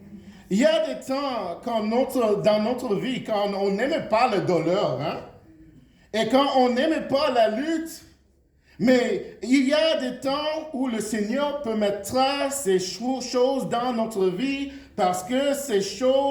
Il y a des temps dans notre vie, quand on n'aime pas la douleur, hein? Et quand on n'aime pas la lutte, mais il y a des temps où le Seigneur peut mettre ces choses dans notre vie parce que ces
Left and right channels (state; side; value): identical; both; correlation 1.00